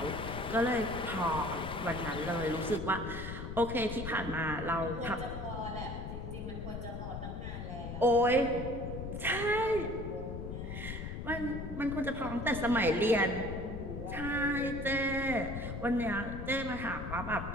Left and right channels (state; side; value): noise; left; rumble, 6 dB below the sound